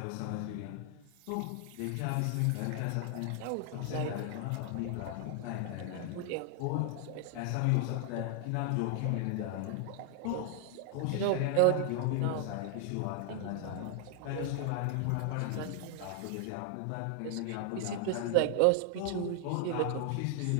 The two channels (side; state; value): both; different; correlation 0.00